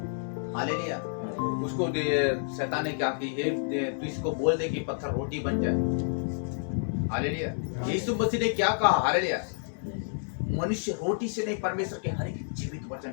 हालेलुया। उसको शैतान ने क्या की तू इसको बोल दे कि पत्थर रोटी बन जाए हालेलुया। यीशु मसीह ने क्या कहा हालेलुया मनुष्य रोटी से नहीं परमेश्वर के हर एक जीवित वचन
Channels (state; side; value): silent; right; 58 dB below the other